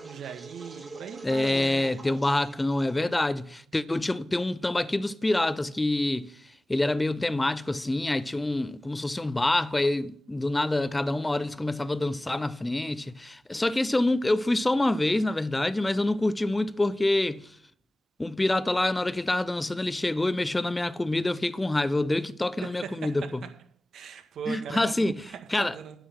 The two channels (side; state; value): both; normal; correlation 0.98